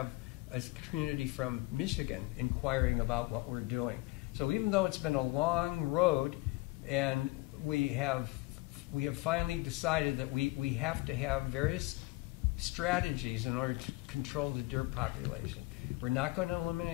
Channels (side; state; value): right; quieter; 21.7 dB